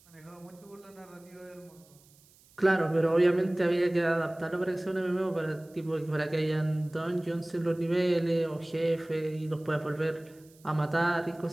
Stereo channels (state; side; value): noise; right; hiss, 28 dB below the sound